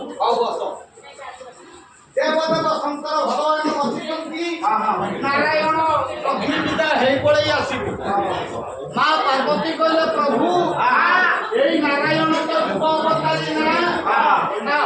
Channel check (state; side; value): identical; both; correlation 1.00